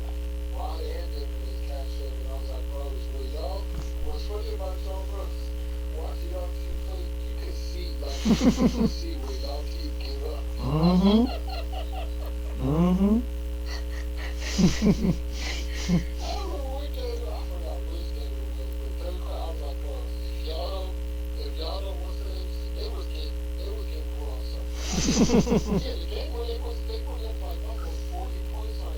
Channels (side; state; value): both; identical; correlation 1.00